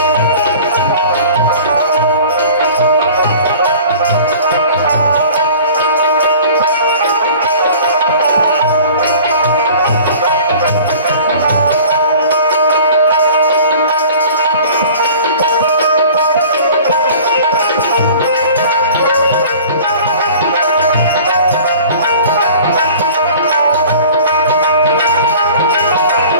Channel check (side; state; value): both; inverted; correlation -0.45